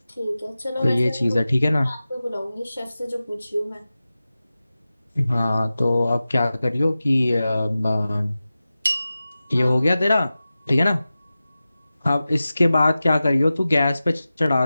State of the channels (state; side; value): inverted; both; correlation -0.95